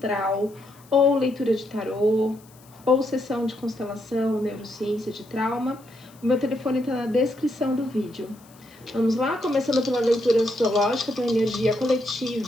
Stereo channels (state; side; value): noise; left; hiss, 27 dB below the sound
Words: ou leitura de tarô, ou sessão de constelação, neurociência de trauma, o meu telefone está na descrição do vídeo. Vamos lá, começando pela leitura astrológica para a energia